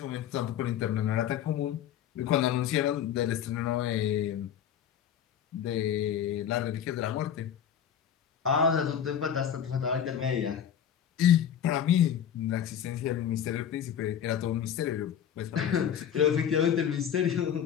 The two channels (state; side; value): quieter; right; 9.1 dB